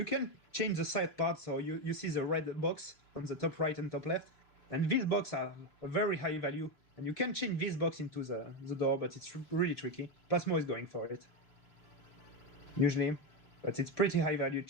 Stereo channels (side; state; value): right; late; 1.7 ms